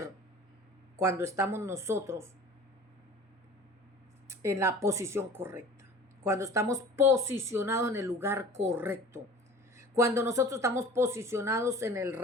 cuando estamos nosotros en la posición correcta, cuando estamos posicionados en el lugar correcto, cuando nosotros estamos posicionados en el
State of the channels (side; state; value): both; normal; correlation 0.43